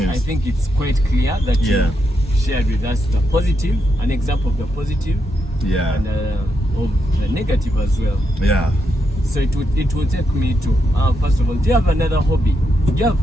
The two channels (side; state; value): both; normal; correlation 0.82